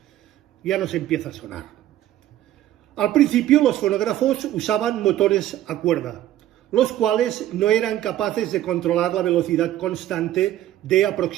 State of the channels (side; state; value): left; quieter; 13.3 dB